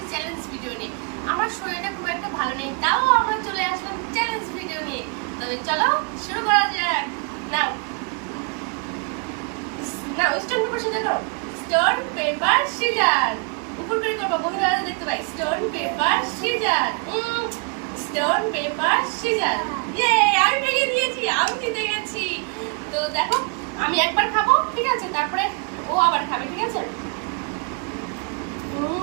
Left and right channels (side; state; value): left; quieter; 35.3 dB